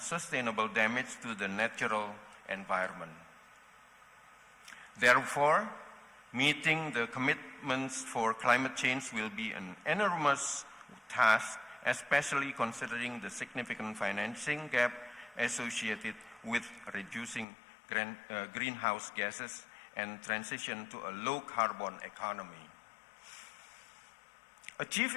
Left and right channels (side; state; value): right; drops out; at 17.4 s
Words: damage to the natural environment. Therefore, meeting the commitments for climate change will be an enormous task, especially considering the significant financing gap associated with reducing greenhouse gases and transition to a low-carbon economy.